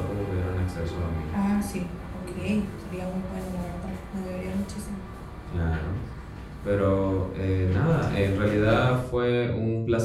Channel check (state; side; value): identical; both; correlation 1.00